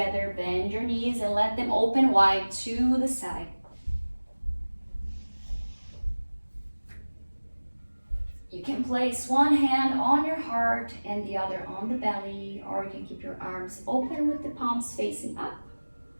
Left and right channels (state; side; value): inverted; both; correlation -1.00